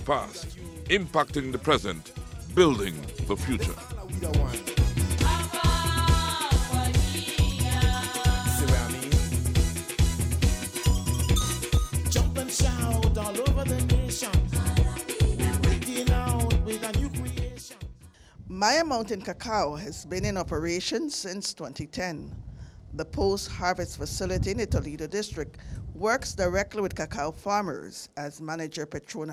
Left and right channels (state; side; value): identical; both; correlation 1.00